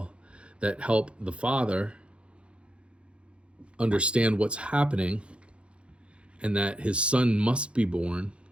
that help the father understand what's happening and that his son must be born.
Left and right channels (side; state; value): left; late; 0.059 ms